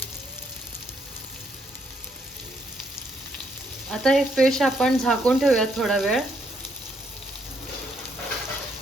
आता हे फिश आपण झाकून ठेवूयात थोडा वेळ।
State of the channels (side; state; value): both; normal; correlation 0.73